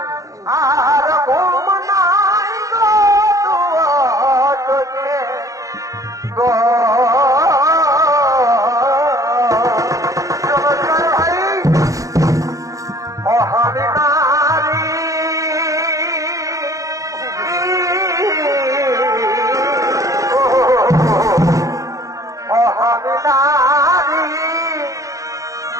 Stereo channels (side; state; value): left; late; 0.16 ms